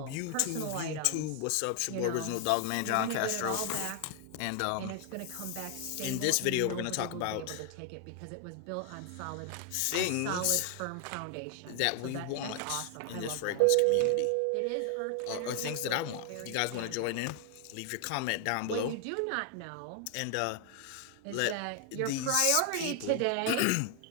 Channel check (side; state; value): both; different; correlation 0.00